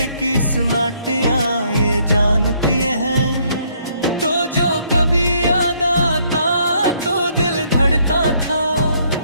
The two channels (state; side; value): inverted; both; correlation -0.68